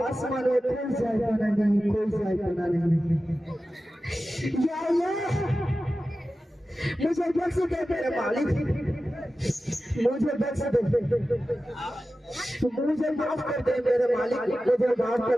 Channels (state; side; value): normal; both; correlation 0.94